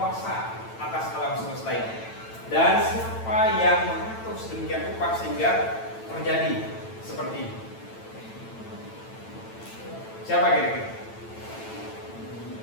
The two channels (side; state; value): right; late; 9.0 ms